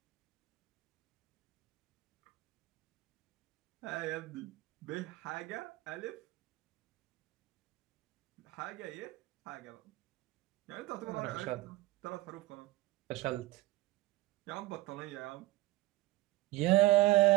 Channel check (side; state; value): left; quieter; 18.0 dB